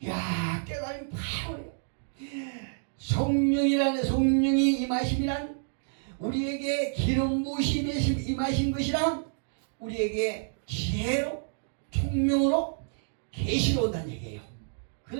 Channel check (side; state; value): left; silent; digital silence